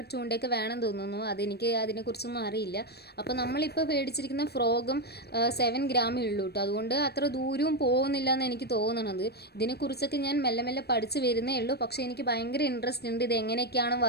ചൂണ്ടയൊക്കെ വേണം തോന്നുന്നു. അതെനിക്ക് അതിനെക്കുറിച്ചൊന്നും അറിയില്ല. അപ്പോൾ നമ്മളിപ്പോൾ മേടിച്ചിരിക്കുന്ന ഫ്രോഗും 7 ഗ്രാമേ ഉള്ളൂ കേട്ടോ. അതുകൊണ്ട് അത്ര ദൂരവും പോകുന്നില്ല എന്ന് എനിക്ക് തോന്നണത്. ഇതിനെക്കുറിച്ചൊക്കെ ഞാൻ മെല്ലെ മെല്ലെ പഠിച്ച് വരുന്നേ ഉള്ളൂ. പക്ഷേ എനിക്ക് ഭയങ്കര ഇൻട്രസ്റ്റ് ഉണ്ട്, ഇത് എങ്ങനെയൊക്കെയാണ്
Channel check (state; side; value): late; right; 0.47 ms